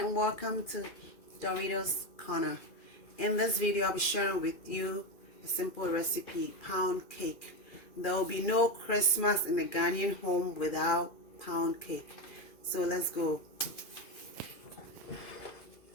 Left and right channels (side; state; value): right; late; 2.3 ms